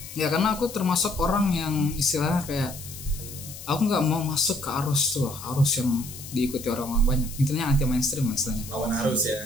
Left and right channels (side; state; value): left; noise; hiss, 13 dB below the sound